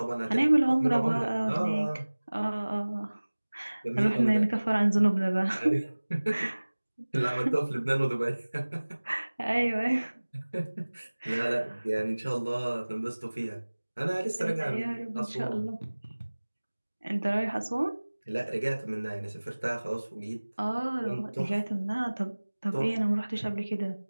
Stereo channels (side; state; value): both; inverted; correlation -1.00